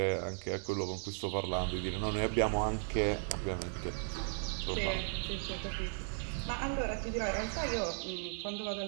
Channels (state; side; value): silent; left; 54 dB below the other